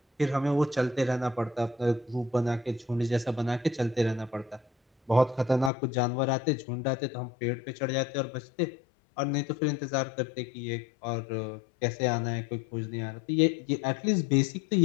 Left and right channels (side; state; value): right; drops out; at 5.7 s